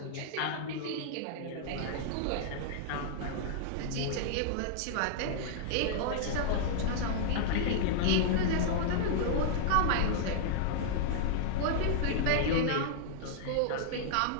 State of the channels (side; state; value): both; different; correlation -0.02